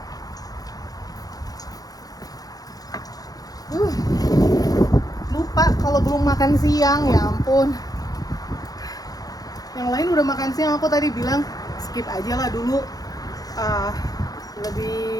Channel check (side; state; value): right; late; 0.18 ms